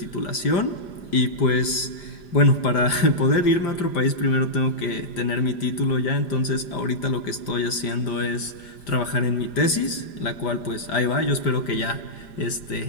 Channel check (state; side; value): late; right; 5.0 ms